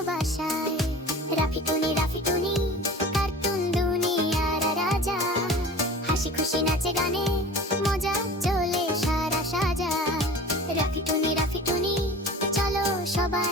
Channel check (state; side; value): normal; both; correlation 0.39